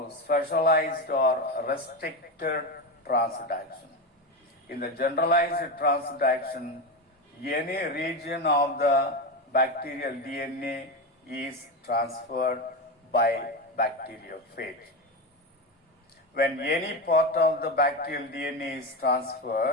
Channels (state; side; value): normal; both; correlation 0.16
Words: specialized or restricted transduction. In the generalized transduction, any region of the bacterial DNA is transferred by bacteriophage. When any part of the bacterial DNA is